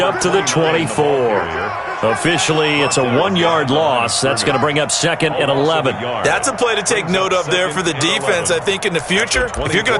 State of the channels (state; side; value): identical; both; correlation 1.00